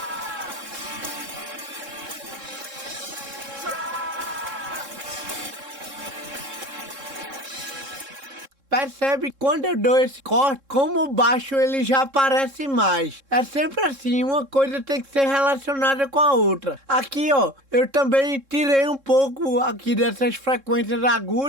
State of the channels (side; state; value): left; late; 3.7 ms